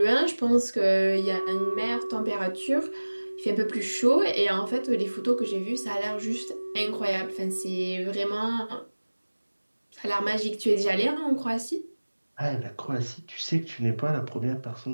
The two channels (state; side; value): inverted; both; correlation -1.00